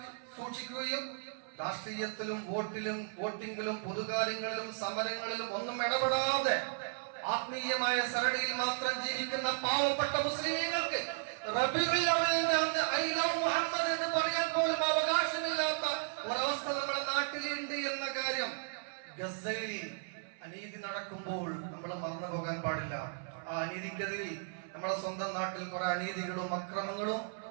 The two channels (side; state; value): left; silent; 54 dB below the other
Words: സൂക്ഷിക്കുകയും രാഷ്ട്രീയത്തിലും വോട്ടിങ്ങിലും പൊതുകാര്യങ്ങളിലും സമരങ്ങളിലും ഒന്നും ഇടപെടാതെ ആത്മീയമായ സരണിയിൽ മാത്രം ജീവിക്കുന്ന പാവപ്പെട്ട മുസ്ലിമീങ്ങൾക്ക് റബീഉൽ അവ്വലിന്റെ അന്ന് ഐ ലവ് മുഹമ്മദ് എന്ന് പറയാൻ പോലും അവകാശമില്ലാത്ത ഒരവസ്ഥ നമ്മുടെ നാട്ടിലുണ്ട് എന്ന കാര്യം ഗസയിൽ അനീതി നടക്കുമ്പോൾ നമ്മൾ മറന്നു പോകാൻ പാടില്ല. ആ അനീതിക്കെതിരിൽ നമ്മുടെ സ്വന്തം നാട്ടിൽ കുറെ അനീതികളും അക്രമങ്ങളും